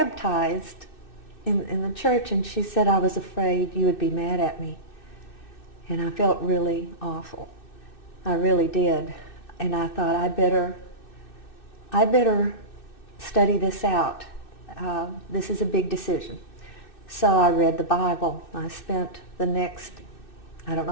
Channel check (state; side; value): late; right; 2.6 ms